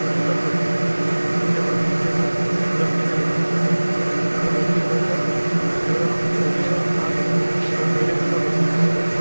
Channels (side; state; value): both; inverted; correlation -1.00